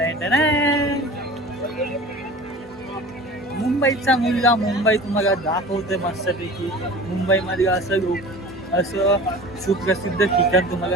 मुंबईचा मुलगा मुंबई तुम्हाला दाखवतोय मस्तपैकी. मुंबईमध्ये असं सुप्रसिद्ध ठिकाण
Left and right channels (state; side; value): normal; both; correlation 0.39